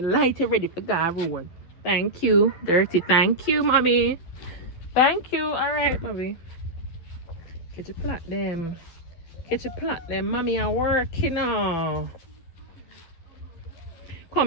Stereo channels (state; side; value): late; right; 12 ms